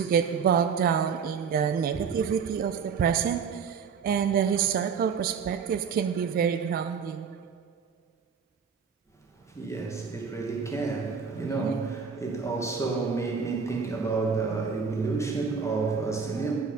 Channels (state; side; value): quieter; left; 6.1 dB